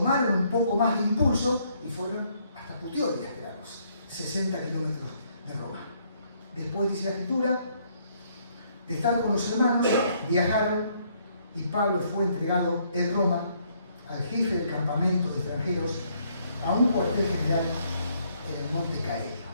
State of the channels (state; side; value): inverted; both; correlation -0.69